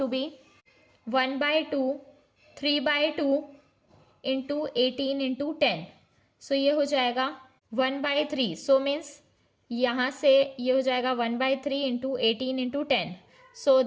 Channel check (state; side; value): identical; both; correlation 1.00